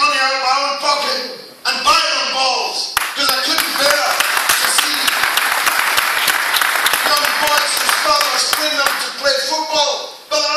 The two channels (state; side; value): identical; both; correlation 1.00